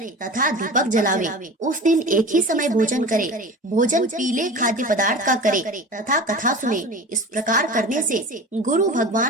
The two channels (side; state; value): both; normal; correlation 0.35